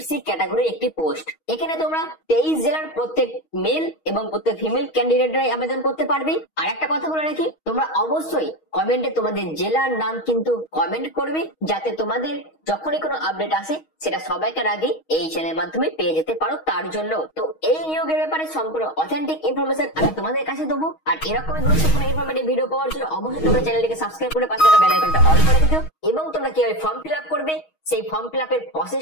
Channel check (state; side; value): late; right; 6.3 ms